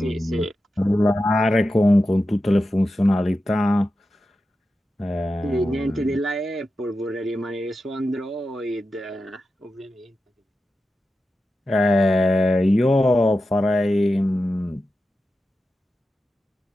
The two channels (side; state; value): both; normal; correlation 0.91